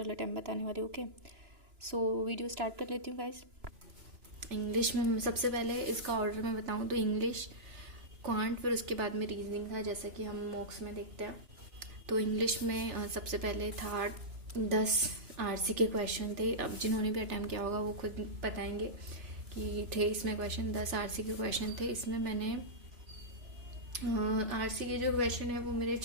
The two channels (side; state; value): left; late; 3.4 ms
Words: अटैम्प्ट बताने वाली हूँ। ओके, सो वीडियो स्टार्ट कर लेती हूँ गाइस। इंग्लिश में सबसे पहले इसका ऑर्डर में बताऊँ तो इंग्लिश, क्वांट, फिर उसके बाद में रीजनिंग था, जैसे कि हम मॉक्स में देखते हैं। तो इंग्लिश में सबसे पहले था 10 आरसी के क्वेश्चन थे। अब जिन्होंने भी अटैम्प्ट किया होगा वो खुद बताएंगे कि थे इसमें क्वेश्चन। 10 आरसी के क्वेश्चन थे। इसमें मैंने आरसी के जो क्वेश्चन है वो मेरे